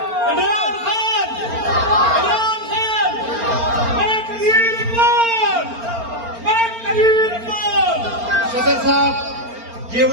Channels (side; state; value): left; late; 4.4 ms